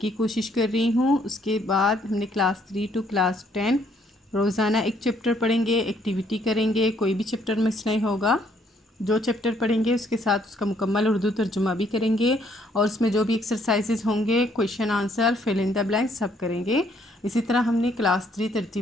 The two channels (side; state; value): both; normal; correlation 0.67